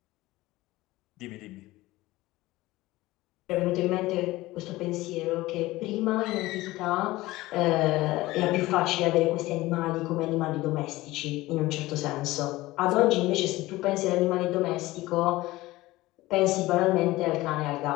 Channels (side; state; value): right; quieter; 18.6 dB